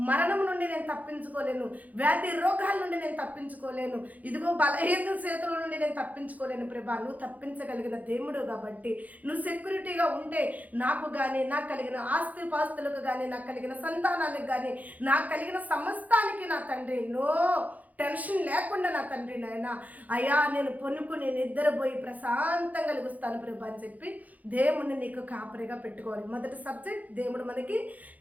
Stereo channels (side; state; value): left; late; 0.078 ms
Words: మరణం నుండి నేను తప్పించుకోలేను, వ్యాధి రోగాల నుండి నేను తప్పించుకోలేను, ఇదిగో బలహీన చేతుల నుండి నేను తప్పించుకోలేను ప్రభా. నువ్వు తప్పించగలిగిన దేవుడు కాబట్టి నువ్వు సెక్యూరిటీగా ఉంటే నాకు కానీ, నాకు కలిగిన ఆస్తి పాస్తులకు కానీ, నాకు కలిగిన సంతానానికి కానీ, నాకు కలిగిన సమస్తానికి నా తండ్రి నో టెన్షన్ లేకుండా నా తండ్రి నాయన అయ్యా నేను పొనుకుని నిద్రపోయి ప్రశాంతంగా కలిగిస్తాను ప్రభా అని చెప్పి దేవుడిని నీకు కాపరిగా పెట్టుకోవాలి. మొదటి సబ్జెక్ట్, దేవుడు మనకి